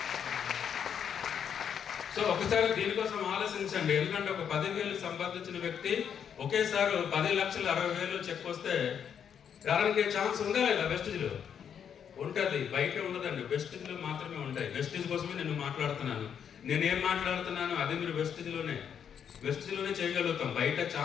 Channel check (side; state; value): right; quieter; 8.0 dB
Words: సో ఒకసారి దీనికోసం ఆలోచించండి. ఎందుకంటే ఒక 10,000 సంపాదించిన వ్యక్తి ఒకేసారి 10,60,000 చెక్ వస్తే రావడానికి ఛాన్స్ ఉందా లేదా? వెస్టీజ్లో ఉంటుంది, బయట ఉండదండి. వెస్టీజ్లో మాత్రమే ఉంటాయి. వెస్టీజ్ కోసమే నేను మాట్లాడుతున్నాను. నేనేం మాట్లాడుతున్నాను అది మీరు వెస్టీజ్లోనే చేయగలుగుతాం. బయట